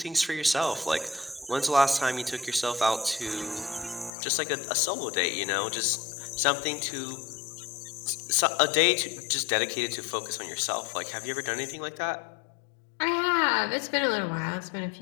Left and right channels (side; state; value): right; drops out; at 4.1 s